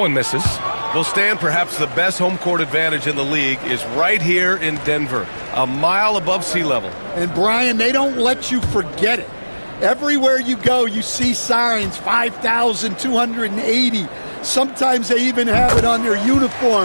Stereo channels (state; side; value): inverted; both; correlation -1.00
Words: one misses. Well, Stan, perhaps the best home court advantage in the league is right here in Denver, a mile above sea level. And, Brian, they don't let you forget it. Everywhere you go, you see signs, 5,280. Sometimes they even have it on their